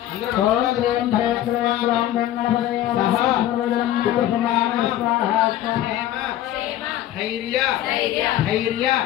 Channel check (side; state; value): right; quieter; 12.8 dB